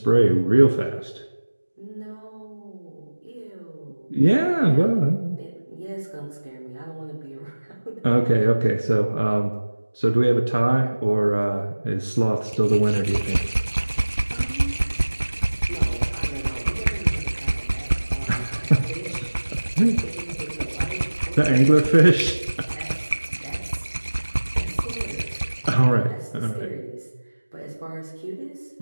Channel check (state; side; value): inverted; both; correlation -1.00